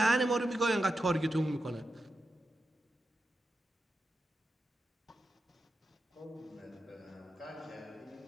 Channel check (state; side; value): normal; both; correlation 0.89